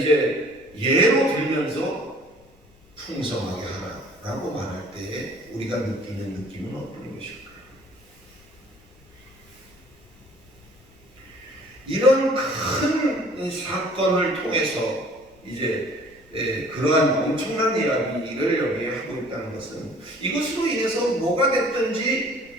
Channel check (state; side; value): noise; left; rumble, 29 dB below the sound